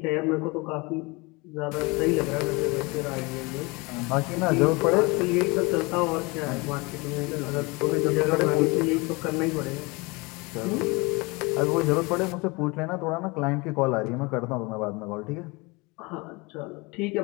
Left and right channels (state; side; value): quieter; right; 26.2 dB